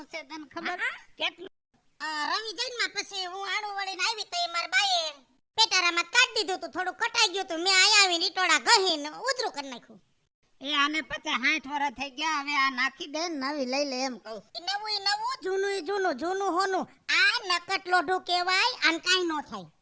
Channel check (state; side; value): identical; both; correlation 1.00